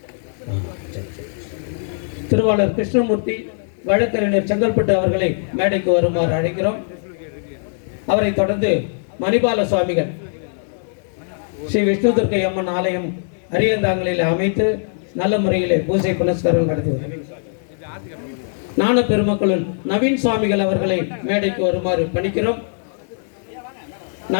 திருவாளர் கிருஷ்ணமூர்த்தி வழக்கறிஞர் செங்கல்பட்டு அவர்களை மேடைக்கு வருமாறு அழைக்கிறோம். அவரை தொடர்ந்து மணிபால சுவாமிகள் ஸ்ரீ விஷ்ணு துர்க்கை அம்மன் ஆலயம் அரியந்தாங்களில் அமைத்து நல்ல முறையிலே பூஜை புனஸ்காரம் நடத்தி வருகிறார். ஞான பெருமக்களுள் நவீன் சுவாமிகள் அவர்களை மேடைக்கு வருமாறு பணிக்கிறோம்.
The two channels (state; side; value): silent; right; digital silence